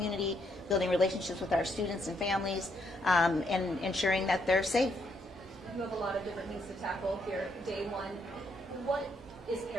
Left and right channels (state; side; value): normal; both; correlation 0.74